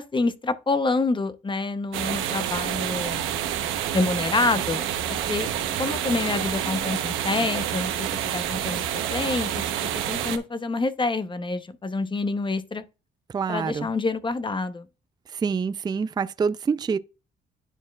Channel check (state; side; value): normal; both; correlation 0.44